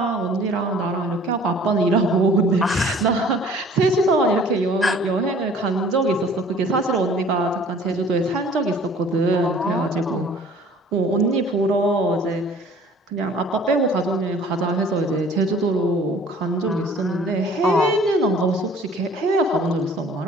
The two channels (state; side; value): normal; both; correlation 0.51